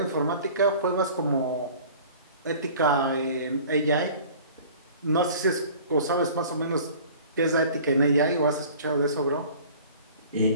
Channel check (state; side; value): inverted; both; correlation -0.46